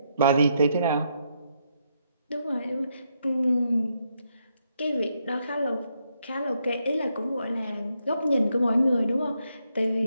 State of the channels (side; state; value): both; inverted; correlation -0.78